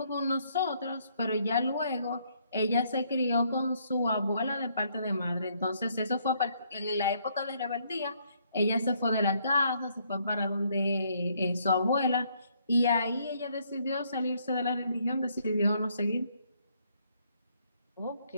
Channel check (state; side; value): inverted; both; correlation -0.69